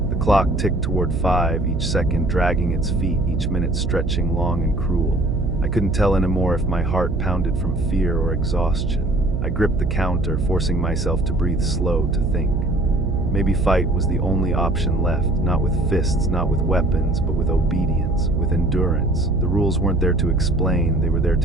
The clock ticked toward 5, each second dragging its feet, each minute stretching long and cruel. I couldn't tell anymore if my heart pounded from fear or exhaustion. I gripped the counter, forcing myself to breathe slow, to think. Maybe fight was the only option left, not with fists, not with weapons, but with obedience, with endurance. The rules weren't there to explain, they were there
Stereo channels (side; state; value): right; noise; hum, 2 dB below the sound